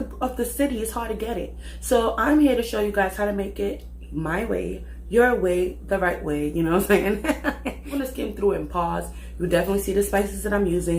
of the city, it's hard to get it. So I'm here to show you guys how to make it my way, your way, the right way. You know what I'm saying? I'm gonna skim through it and pause. You definitely see the spices that I'm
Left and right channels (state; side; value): identical; both; correlation 1.00